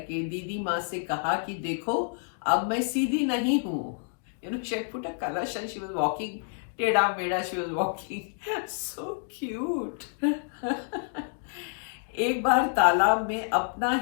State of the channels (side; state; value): right; silent; digital silence